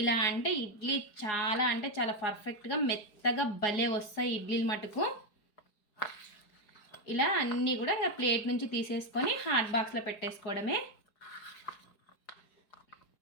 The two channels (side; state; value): right; late; 4.8 ms